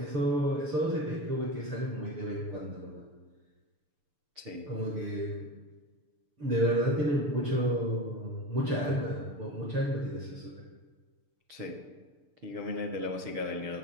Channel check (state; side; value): late; left; 6.8 ms